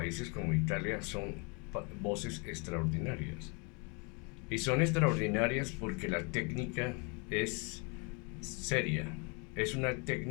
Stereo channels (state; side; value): quieter; right; 33.1 dB